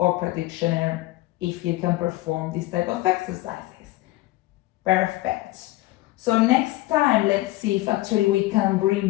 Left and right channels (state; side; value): quieter; right; 18.6 dB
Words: practitioner if you can perform this type of exercises. Perfect. So next time, let's see if actually we can